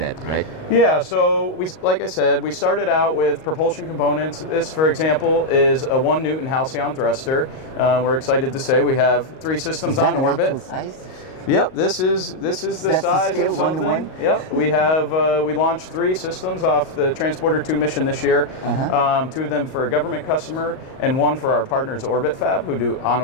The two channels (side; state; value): right; late; 38 ms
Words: right? Yeah, so like I said, we started out with propulsion components. This, for example, is a 1 Newton halcyon thruster. We're excited to say we have 3 systems on orbit. Is that an actual size? Yep, this is the size scale, of something. 1 to 1? Yep, we have we launched 3 systems off the Transporter 2 mission this year. 2 of them for a government customer, and 1 for our partners Orbit Fab, who do